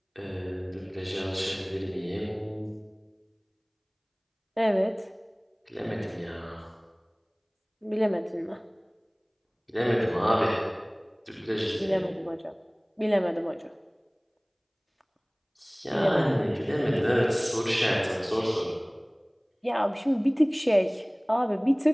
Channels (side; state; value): both; identical; correlation 1.00